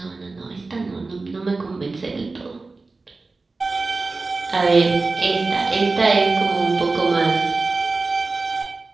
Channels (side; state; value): left; quieter; 3.7 dB